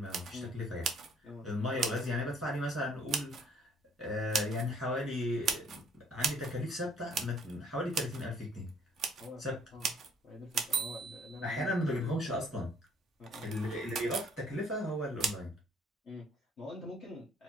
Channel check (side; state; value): both; normal; correlation 0.62